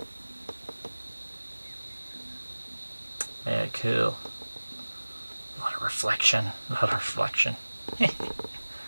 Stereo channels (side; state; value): both; inverted; correlation -1.00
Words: Yeah, cool. A lot of reflection. A lot of reflection.